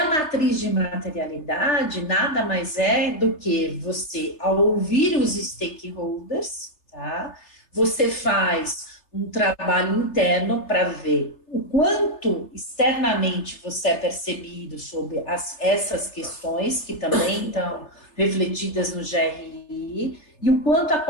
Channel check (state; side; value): late; right; 3.3 ms